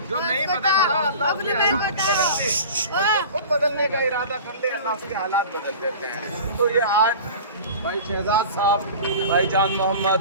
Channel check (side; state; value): both; inverted; correlation -0.38